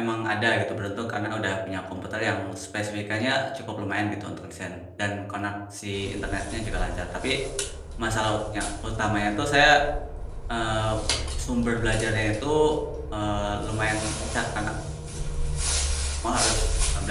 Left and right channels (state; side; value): identical; both; correlation 1.00